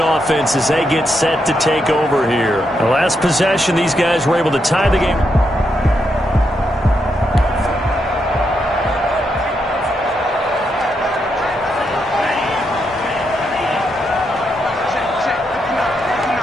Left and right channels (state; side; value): normal; both; correlation 0.81